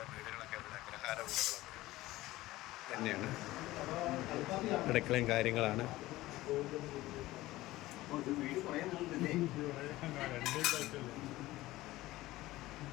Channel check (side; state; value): right; quieter; 17.5 dB